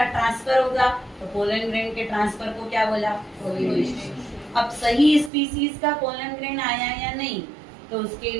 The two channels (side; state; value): left; drops out; at 5.3 s